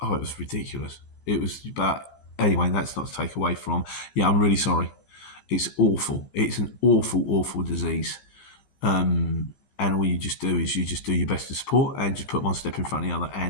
ridiculous. But anyway, that's not to take away from. Yeah, I'm really sorry. It's awful. It's an awful, awful disease. And all you just do is you just do your best to support and just put one step in front of the other.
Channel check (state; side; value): late; right; 15 ms